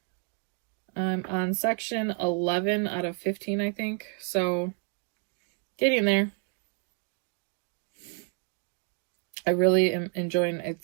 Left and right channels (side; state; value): left; quieter; 35.9 dB